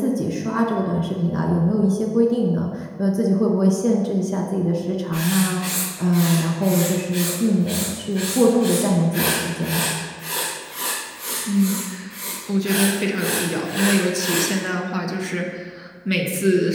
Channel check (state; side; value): identical; both; correlation 1.00